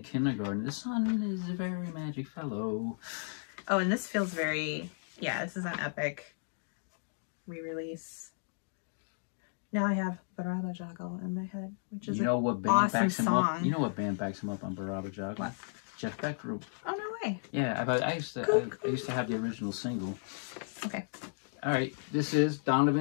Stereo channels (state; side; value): silent; right; digital silence